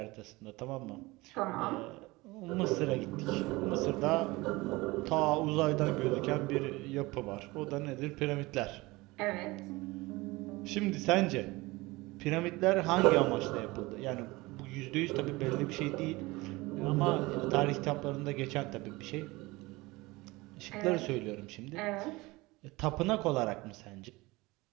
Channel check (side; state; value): left; quieter; 21.8 dB